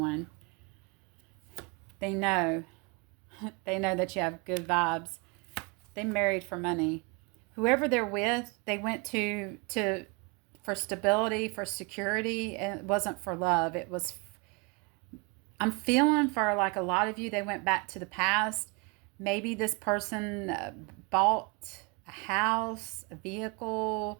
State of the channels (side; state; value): left; quieter; 29.9 dB